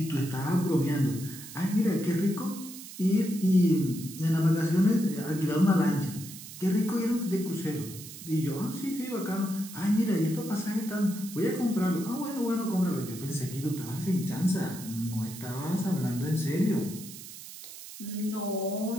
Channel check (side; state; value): right; noise; hiss, 13 dB below the sound